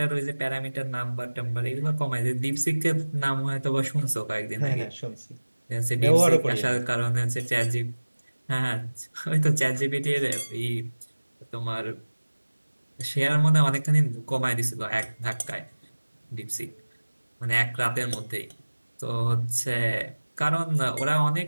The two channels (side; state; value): both; inverted; correlation -1.00